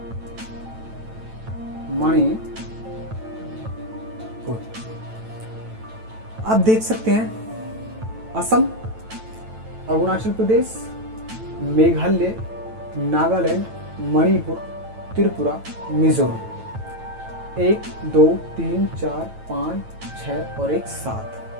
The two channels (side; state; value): left; late; 9.0 ms